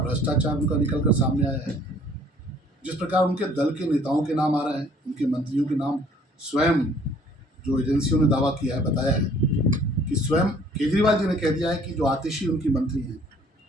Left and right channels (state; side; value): normal; both; correlation 0.57